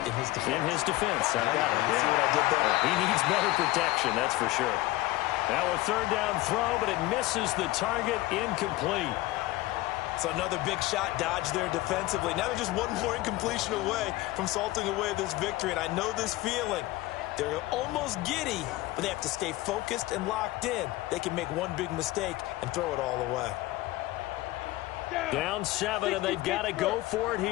In his defense. In his defense. I got it. See what I did there? He needs better protection, that's for sure. Now a 3rd down throw, but it misses the target, incomplete. So another big shot dodge there defensively. Now they're just one more incompletion away from salting away this victory. And I know this feeling. They're almost giddy, but they have to stay focused and locked in. They can make one big mistake and throw it all away. Down 7, and they've got to go for it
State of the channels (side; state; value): right; quieter; 18.4 dB